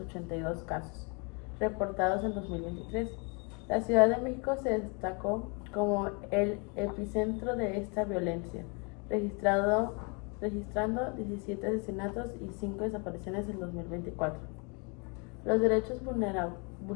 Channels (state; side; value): quieter; right; 33.8 dB